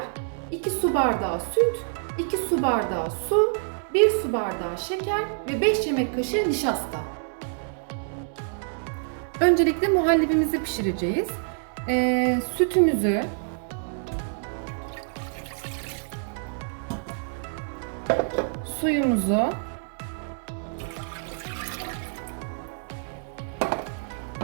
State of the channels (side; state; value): left; silent; digital silence